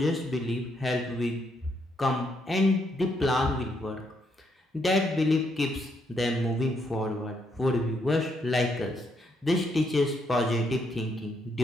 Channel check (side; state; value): both; normal; correlation 0.75